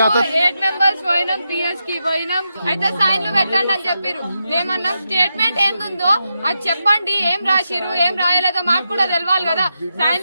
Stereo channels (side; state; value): both; inverted; correlation -0.86